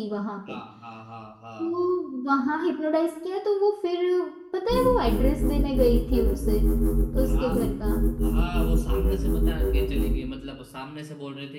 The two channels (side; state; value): both; identical; correlation 1.00